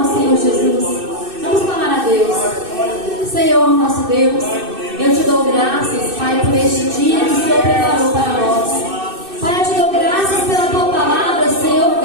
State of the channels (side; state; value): left; late; 2.6 ms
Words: Senhor Jesus. Vamos clamar a Deus. Senhor, nosso Deus, eu te dou graças, Pai, por este dia que o Senhor preparou para nós. Pai, eu te dou graças pela tua palavra, Senhor